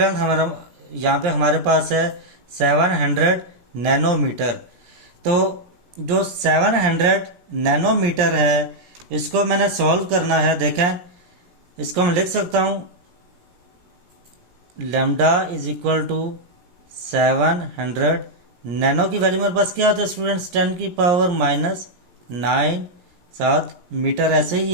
हमारा यहाँ पे हमारे पास है 700 नैनोमीटर। तो जो 700 नैनोमीटर है इसको मैंने सॉल्व करना है। देखें इसको मैं लिख सकता हूँ lambda is equal to 700 nano की वैल्यू मेरे पास क्या होता है स्टूडेंट्स 10 की पावर -9 7 मीटर, ऐसे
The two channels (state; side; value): late; left; 17 ms